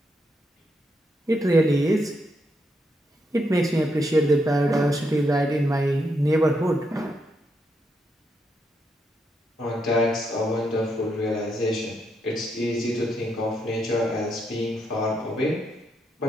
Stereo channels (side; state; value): both; normal; correlation 0.79